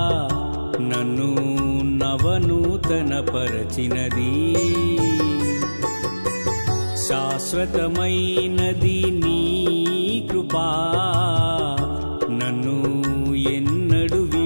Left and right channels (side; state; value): both; inverted; correlation -1.00